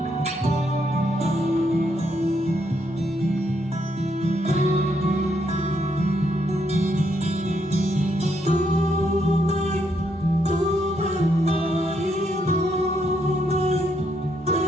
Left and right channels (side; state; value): both; normal; correlation 0.76